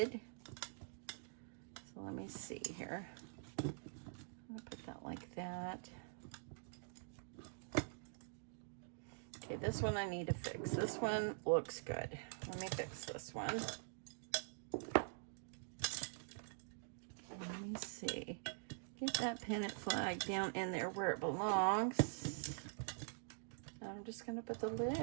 So let me see here. I'm gonna put that like that. Okay, this one I need to fix. This one looks good. Let me fix this one. Let me see. Get that pennant flag down in there where it belongs. I'm just going to put the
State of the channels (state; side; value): silent; left; digital silence